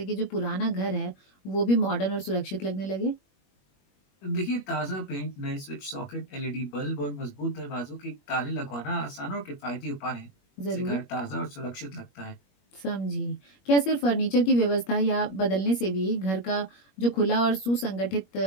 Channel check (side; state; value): right; late; 21 ms